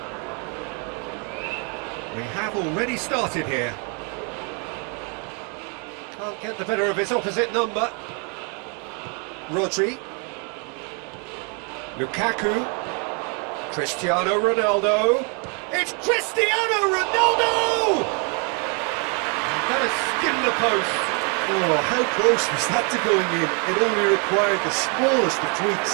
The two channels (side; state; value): left; quieter; 36.1 dB